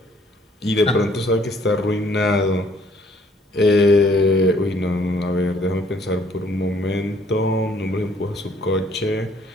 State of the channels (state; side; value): normal; both; correlation 0.62